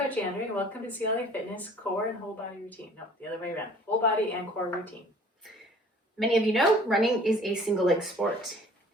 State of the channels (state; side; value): normal; both; correlation 0.51